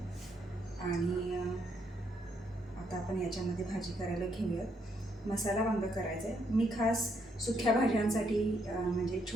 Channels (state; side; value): normal; both; correlation 0.74